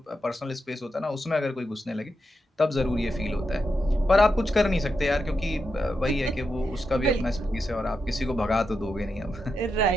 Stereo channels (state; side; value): normal; both; correlation 0.86